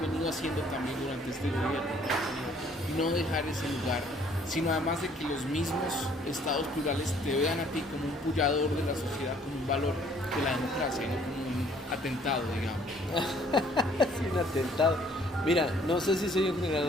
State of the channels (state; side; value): normal; both; correlation 0.60